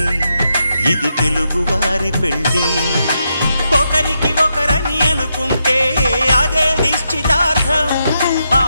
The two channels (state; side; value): inverted; both; correlation -0.83